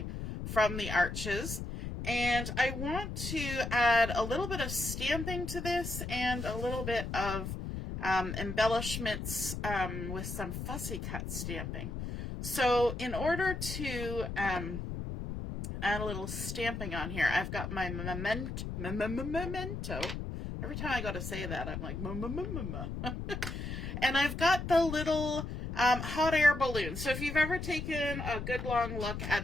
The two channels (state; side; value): noise; left; rumble, 5 dB below the sound